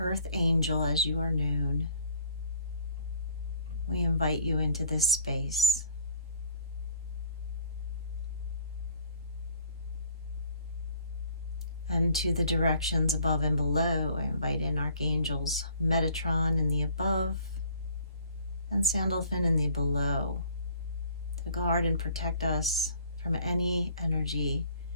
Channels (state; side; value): inverted; both; correlation -0.54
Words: Angel, as you are known, we invite you into this space. And to the directions above and below, I invite in Archangels Metatron in the above and Sandalphon in the below to guard and protect us from any energy